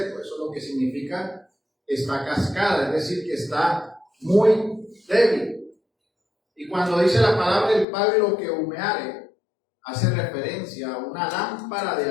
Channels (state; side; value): drops out; right; at 7.9 s